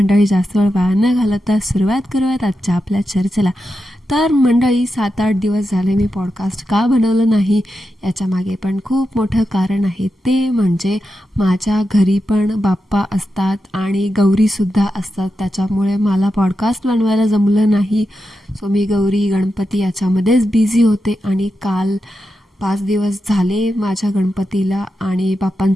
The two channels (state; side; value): normal; both; correlation 0.88